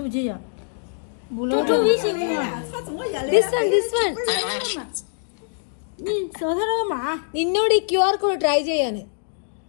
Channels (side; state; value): right; silent; digital silence